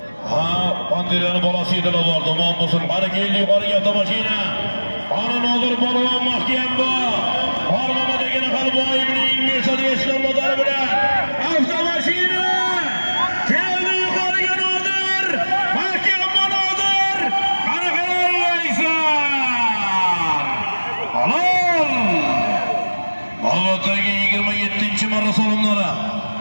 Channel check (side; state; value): both; inverted; correlation -1.00